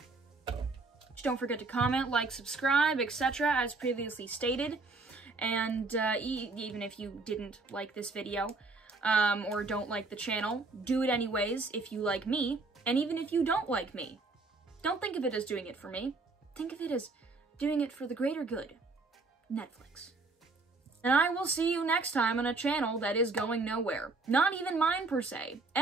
Just don't forget to comment, like, subscribe, etc. as previously stated. And even if you didn't like this video, or don't like the channel, do it anyways if you like me. And even if you don't like me, don't think of it as doing it for me. Think of it as doing it for the greater good. Netflix. And I will see you next time on a channel that is going nowhere. Not even mine per se.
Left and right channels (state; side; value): quieter; left; 3.6 dB